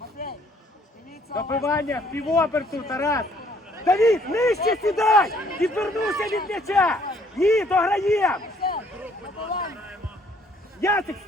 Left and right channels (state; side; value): normal; both; correlation 0.63